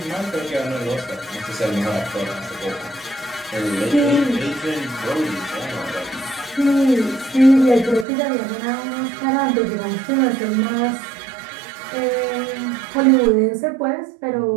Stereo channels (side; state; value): left; drops out; at 8.1 s